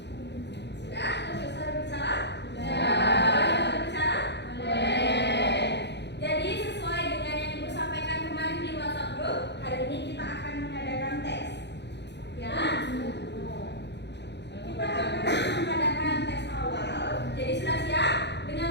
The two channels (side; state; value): right; late; 0.50 ms